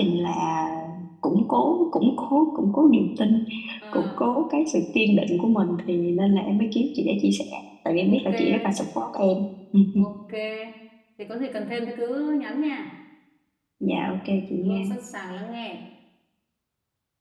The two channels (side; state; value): both; identical; correlation 1.00